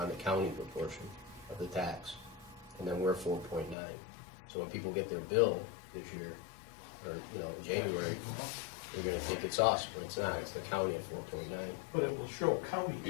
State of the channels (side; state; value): right; drops out; at 3.8 s